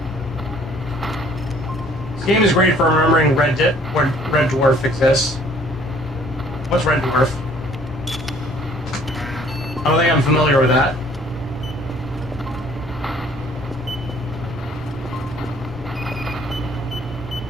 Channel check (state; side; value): normal; both; correlation 0.57